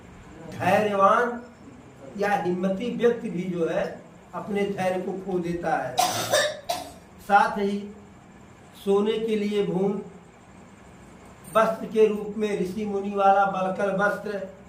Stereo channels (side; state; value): both; identical; correlation 1.00